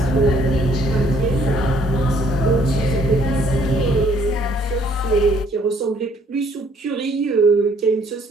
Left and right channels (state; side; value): normal; both; correlation 0.63